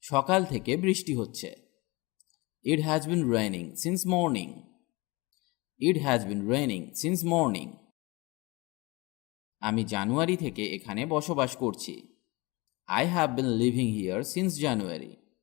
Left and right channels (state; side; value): quieter; right; 24.4 dB